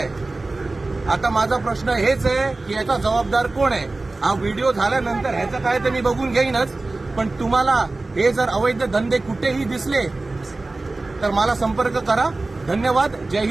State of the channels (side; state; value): left; quieter; 3.2 dB